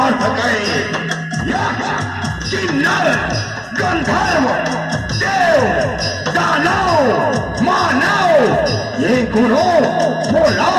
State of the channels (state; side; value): identical; both; correlation 1.00